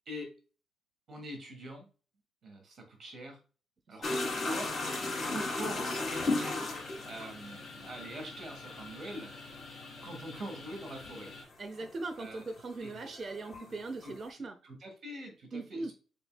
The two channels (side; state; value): both; normal; correlation 0.82